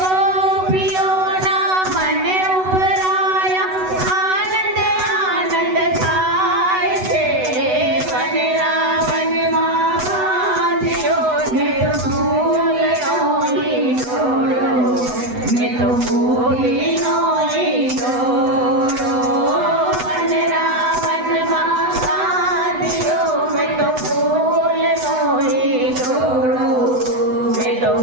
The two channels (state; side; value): late; left; 8.0 ms